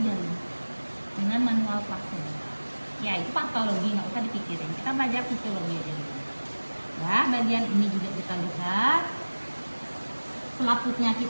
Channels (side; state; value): both; inverted; correlation -1.00